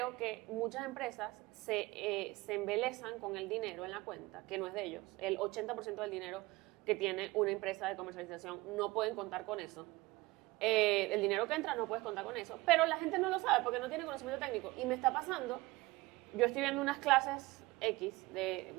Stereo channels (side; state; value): left; quieter; 21.2 dB